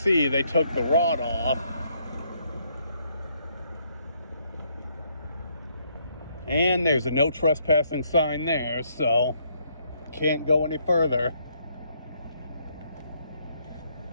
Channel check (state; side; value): inverted; both; correlation -0.71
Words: they took the rod off. And there's a no trespassing sign there, so can't go any further.